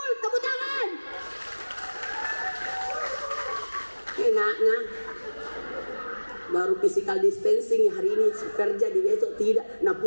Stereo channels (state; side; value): inverted; both; correlation -1.00